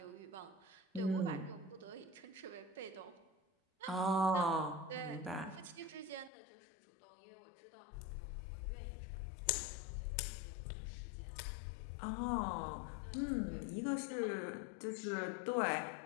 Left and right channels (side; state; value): right; drops out; at 6.3 s